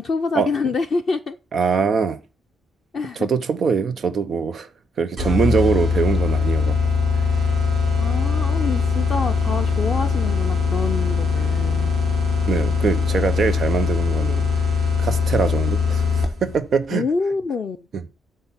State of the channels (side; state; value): both; normal; correlation 0.75